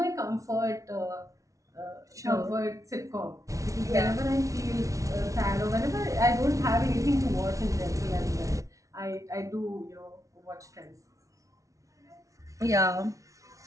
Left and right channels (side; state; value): left; late; 0.16 ms